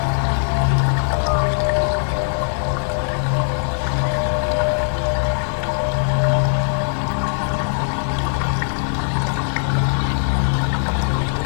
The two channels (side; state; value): right; silent; digital silence